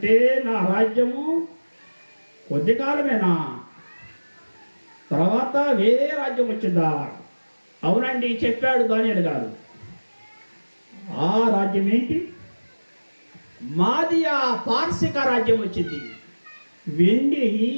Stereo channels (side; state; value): both; inverted; correlation -1.00